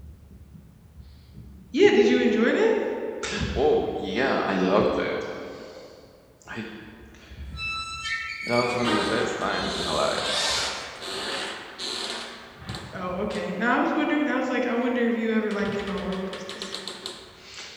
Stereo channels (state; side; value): identical; both; correlation 1.00